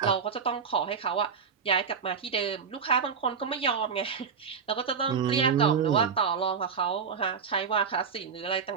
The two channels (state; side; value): quieter; left; 6.1 dB